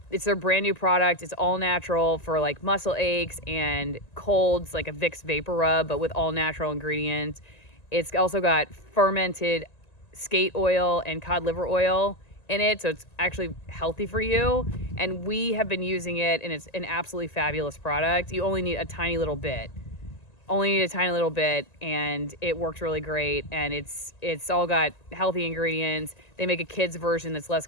It's their brand new product. It's all natural for like muscle aches and colds, like a Vicks vapor rub, but with all natural ingredients. It's also got fermented skate oil and cod liver oil in it, so it's actually healthy for you. And we have been using it, and it's an absolutely fabulous product. You only need a tiny little bit. And it works really great, and it's all got healthy ingredients. They make a kid's version that's less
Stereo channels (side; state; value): right; late; 1.9 ms